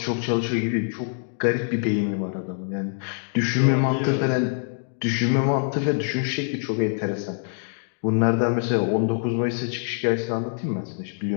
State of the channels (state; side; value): silent; right; digital silence